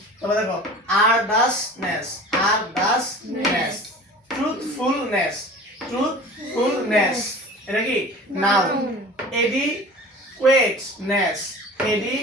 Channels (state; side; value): normal; both; correlation 0.40